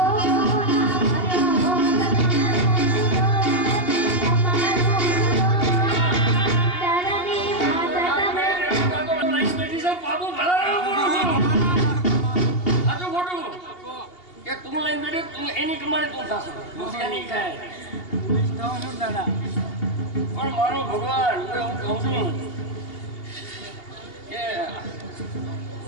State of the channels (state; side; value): late; right; 2.8 ms